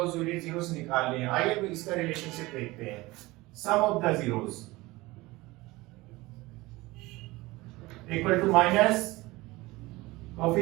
जीरोस निकाल लिए। आइए अब इसका रिलेशनशिप देखते हैं। Sum of the zeros equal to minus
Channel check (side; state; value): left; quieter; 20.8 dB